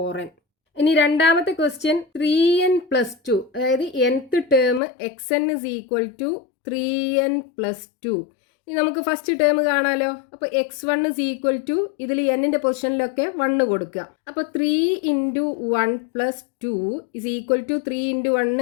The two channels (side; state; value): right; drops out; at 4.8 s